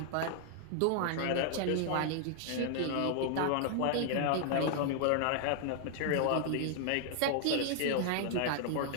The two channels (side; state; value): both; different; correlation 0.00